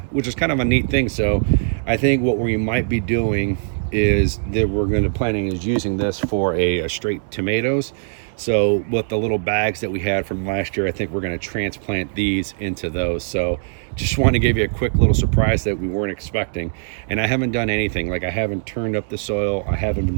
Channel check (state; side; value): silent; left; 65 dB below the other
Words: a neat thing. So I think what we might be doing is that we're going to planning is using this for a straight tomatoes. So with the little bags that we had from last year, I think we're going to transplant these into those. So just want to give you a quick little surprise that we weren't expecting. And I haven't done anything, like I haven't turned up the soil, I haven't